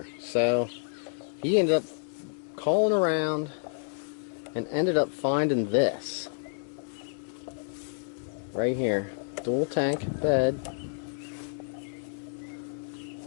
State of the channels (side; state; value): right; silent; digital silence